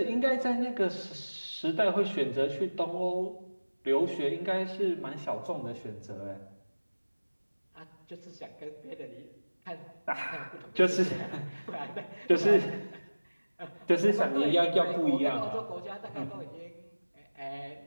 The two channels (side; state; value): both; inverted; correlation -1.00